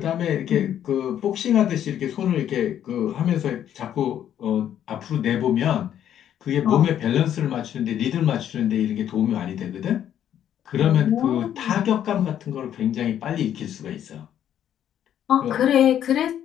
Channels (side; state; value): right; quieter; 10.3 dB